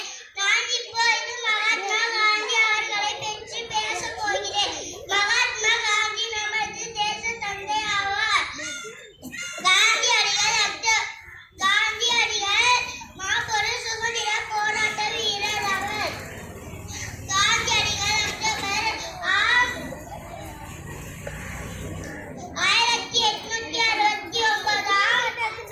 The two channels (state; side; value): identical; both; correlation 1.00